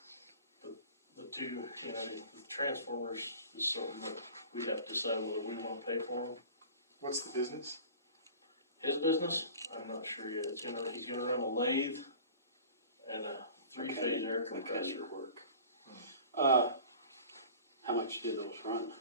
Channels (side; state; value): both; inverted; correlation -0.42